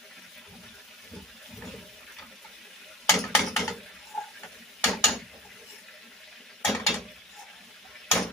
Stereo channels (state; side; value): normal; both; correlation 0.41